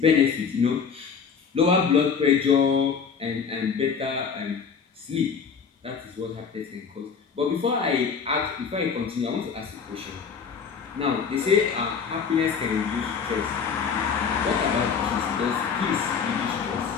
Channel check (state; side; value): quieter; right; 6.2 dB